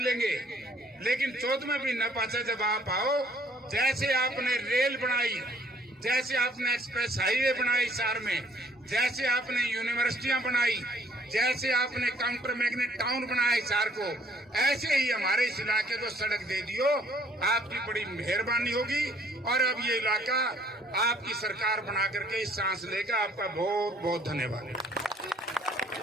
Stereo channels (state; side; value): normal; both; correlation 0.61